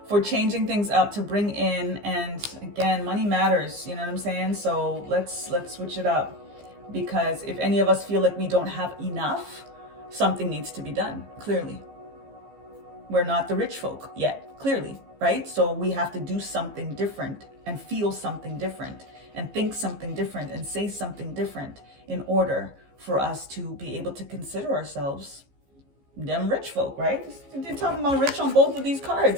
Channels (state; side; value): late; left; 15 ms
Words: for changing things up to bring in, and again, money matters, you know what I'm saying? So let's switch it up, because if any of us feel like we don't have enough, something needs to be done, clearly. We're not the rich folk yet, clearly, right? So we have to do something different and feel something different and think something different and say something different in order for us to be able to consider ourselves them rich folk, right? They're talking about rich on both of these